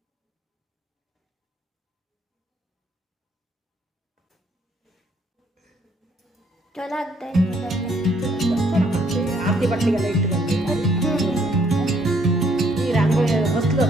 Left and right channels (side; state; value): both; normal; correlation 0.67